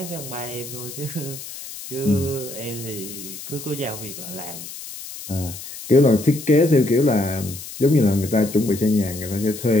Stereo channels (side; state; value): left; noise; hiss, 12 dB below the sound